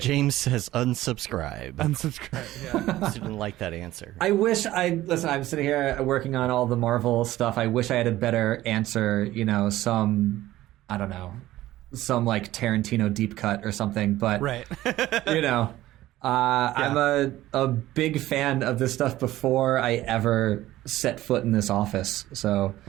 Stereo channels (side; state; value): left; quieter; 15.5 dB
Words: James says unsubscribe. Unsubscribe. Yeah. Didn't like that answer. I wish I'm sitting here working on all the Marvel stuff. I wish I had a better answer, some like Tarantino deep cut or something, but right. I'm a big fan of this stuff before I ever set foot in this office. So,